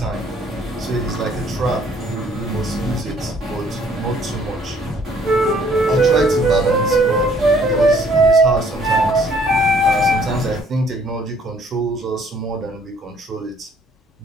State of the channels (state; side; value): normal; both; correlation 0.61